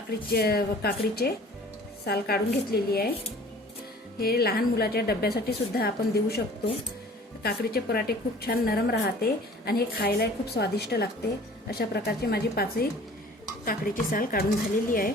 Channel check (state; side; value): normal; both; correlation 0.48